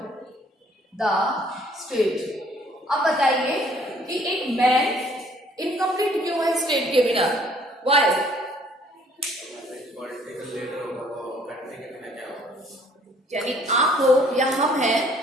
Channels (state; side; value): normal; both; correlation 0.59